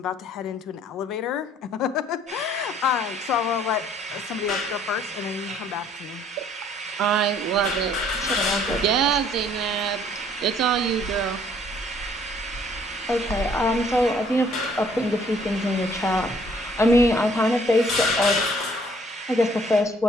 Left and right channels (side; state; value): both; normal; correlation 0.60